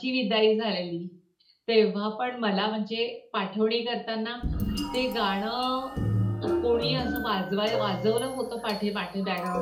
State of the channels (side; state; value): both; identical; correlation 1.00